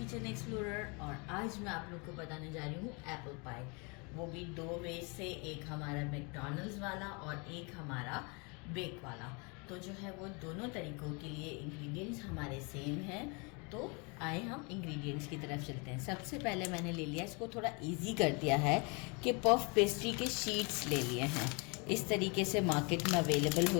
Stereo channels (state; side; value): quieter; right; 31.5 dB